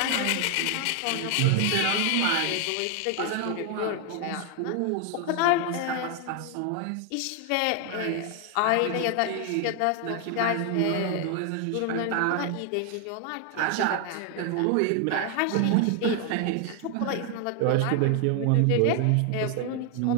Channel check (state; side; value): different; both; correlation 0.00